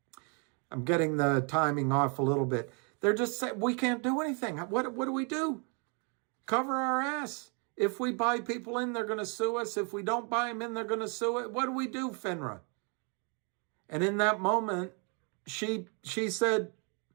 I'm getting the timing off a little bit. They're just saying, we can't do anything. What do we do? Cover our ass. If we buy people in, they're going to sue us. If we don't buy them in, they're going to sue it. What do we do, FINRA? And in that moment, she said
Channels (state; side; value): quieter; left; 36.6 dB